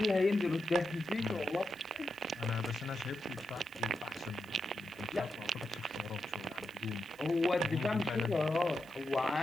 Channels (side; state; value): right; noise; hiss, 25 dB below the sound